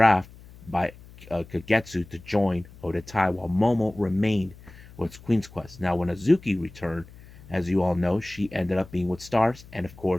by Kagetsu to join Odatai, while Momo remained with Queen's Quest. Now, when Azuki returned, as you all know, she ended up being with Stars, and of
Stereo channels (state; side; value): noise; left; hum, 21 dB below the sound